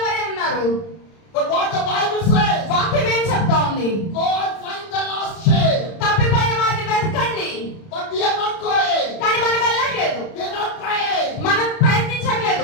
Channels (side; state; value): right; late; 31 ms